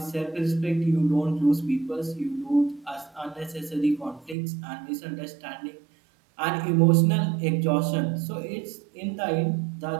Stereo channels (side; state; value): left; drops out; at 4.4 s